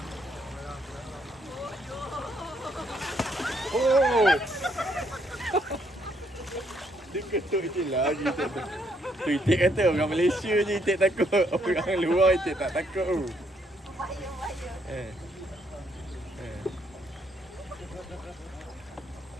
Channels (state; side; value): normal; both; correlation 0.71